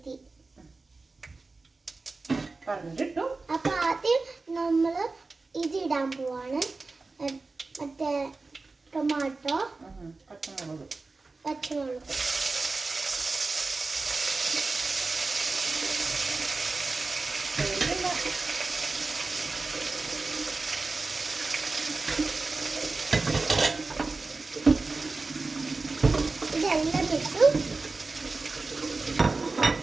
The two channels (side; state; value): left; quieter; 3.7 dB